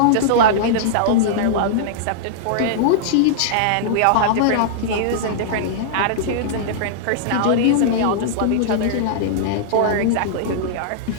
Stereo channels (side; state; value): both; different; correlation -0.02